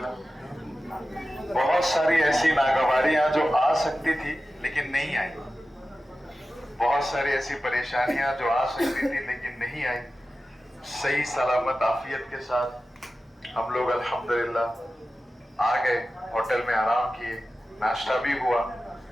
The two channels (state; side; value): normal; both; correlation 0.94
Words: बहुत सारी ऐसी नागवारियां जो आ सकती थी लेकिन नहीं आई, बहुत सारी ऐसी परेशानियां जो आ सकती थी लेकिन नहीं आई। सही सलामत आफियत के साथ हम लोग अल्हम्दुलिल्लाह आ गए, होटल में आराम किए, नाश्ता भी हुआ।